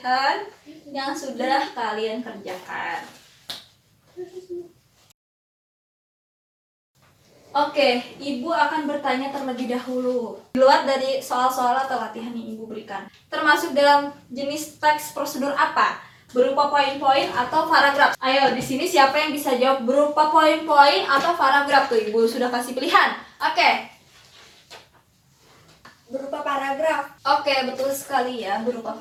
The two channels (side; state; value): both; identical; correlation 1.00